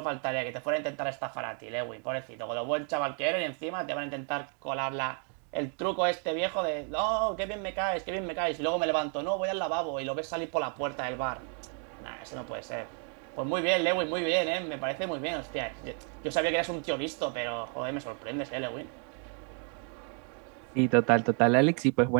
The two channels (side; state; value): left; quieter; 39.9 dB